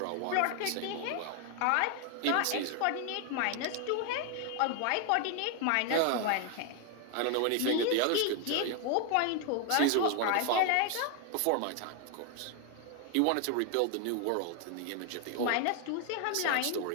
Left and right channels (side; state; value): both; different; correlation 0.01